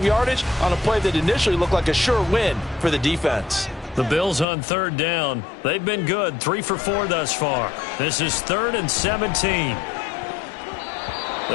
yardage on a play that initially looked like a sure win for the defense. The Bills on 3rd down. They've been good, 3 for 4 thus far. This is 3rd and 17.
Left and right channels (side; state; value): right; drops out; at 4.5 s